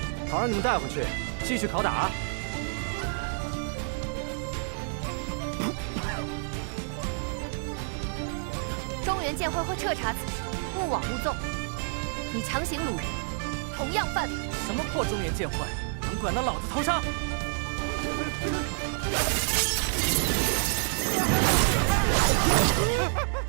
好让你们带回去，继续拷打。中原剑会会彻查此事，勿枉勿纵。你强行掳人，同样犯法。什么破中原剑会，能管到老子头上？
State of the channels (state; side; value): silent; left; 59 dB below the other